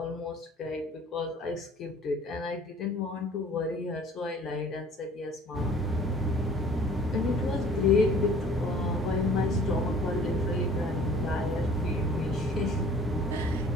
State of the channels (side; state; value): both; normal; correlation 0.51